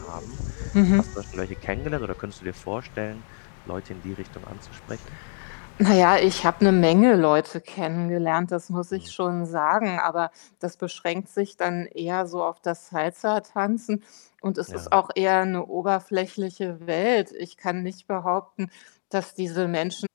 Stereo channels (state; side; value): silent; right; digital silence